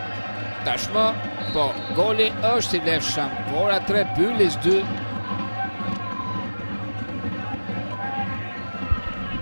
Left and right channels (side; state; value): both; inverted; correlation -1.00